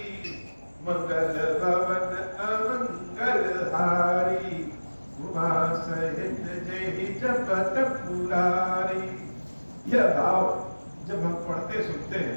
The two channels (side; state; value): both; inverted; correlation -1.00